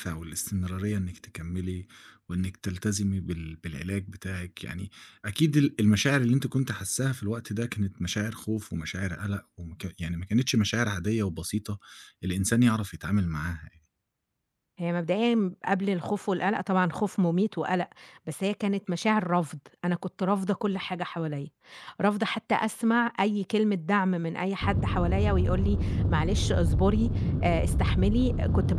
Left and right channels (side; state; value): both; identical; correlation 1.00